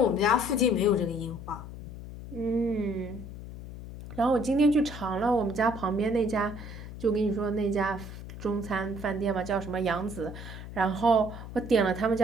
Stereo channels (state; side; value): noise; left; hum, 12 dB below the sound